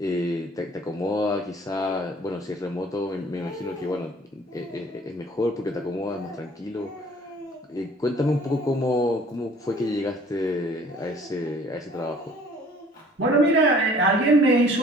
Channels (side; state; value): both; normal; correlation 0.53